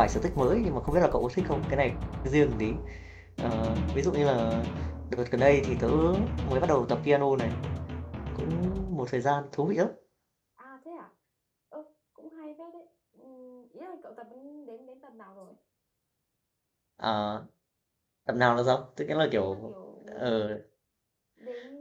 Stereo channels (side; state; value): both; identical; correlation 1.00